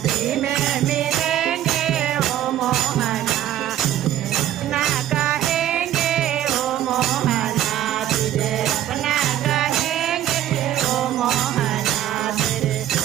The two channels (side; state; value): left; quieter; 12.1 dB